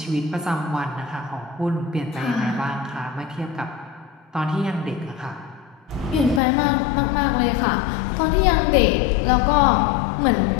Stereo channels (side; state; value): right; drops out; at 6.4 s